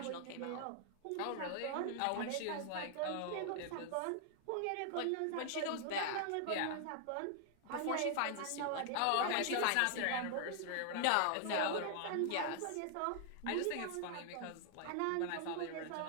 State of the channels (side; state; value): both; different; correlation 0.00